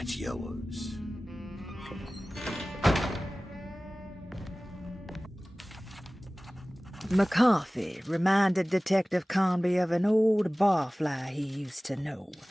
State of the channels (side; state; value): both; normal; correlation 0.98